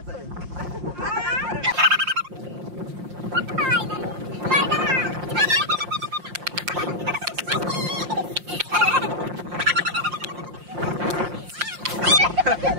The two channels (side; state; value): left; late; 5.7 ms